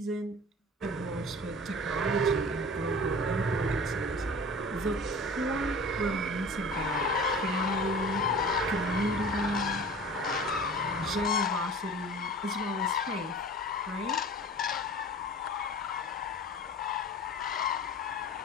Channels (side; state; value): both; normal; correlation 0.40